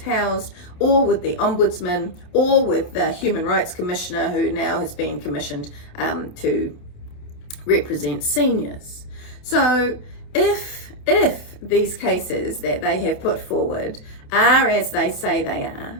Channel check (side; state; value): right; late; 28 ms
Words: or with the Ombudsman, or with the Human Rights Commissioner, who now has been commissioned to represent seniors. So if these cases that they have put forward are as they say they